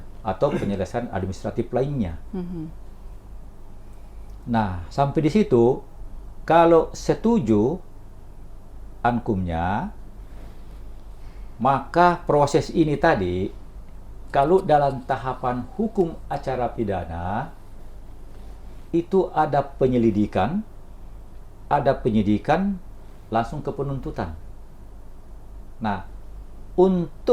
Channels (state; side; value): identical; both; correlation 1.00